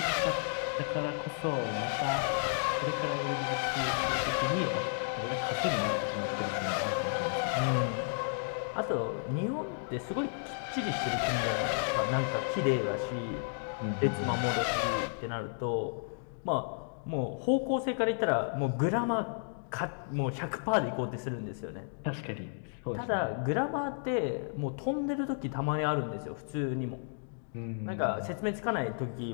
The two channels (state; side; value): silent; right; digital silence